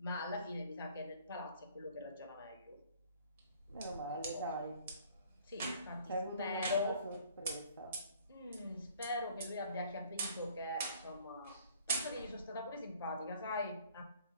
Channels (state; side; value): inverted; both; correlation -0.56